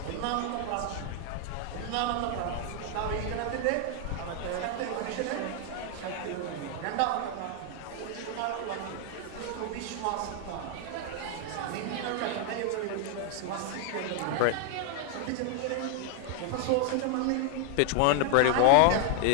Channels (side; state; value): both; different; correlation 0.01